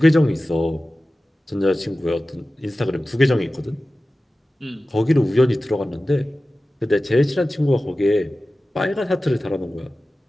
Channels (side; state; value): both; normal; correlation 0.95